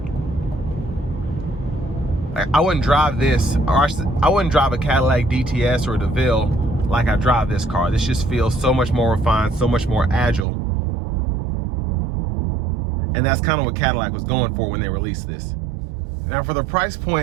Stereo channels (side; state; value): left; drops out; at 10.5 s